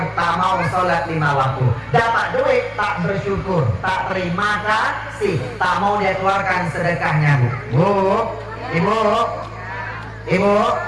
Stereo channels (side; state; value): both; identical; correlation 1.00